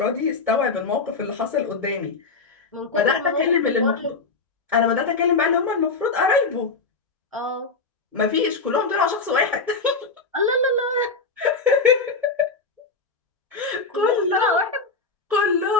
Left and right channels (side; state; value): right; quieter; 4.2 dB